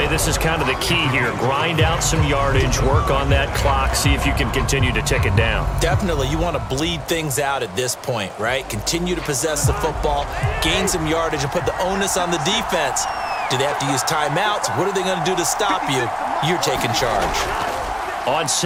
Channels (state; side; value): identical; both; correlation 1.00